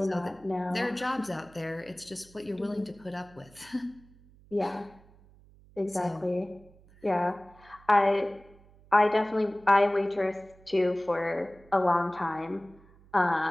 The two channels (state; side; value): noise; right; hum, 26 dB below the sound